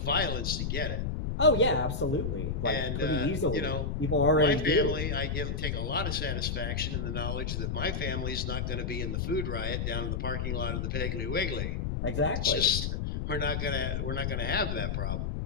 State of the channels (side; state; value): left; noise; rumble, 1 dB below the sound